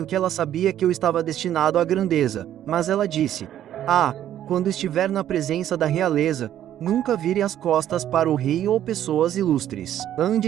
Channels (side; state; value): left; quieter; 11.4 dB